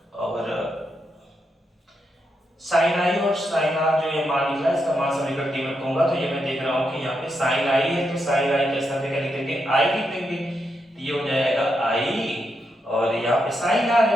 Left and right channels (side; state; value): both; normal; correlation 0.83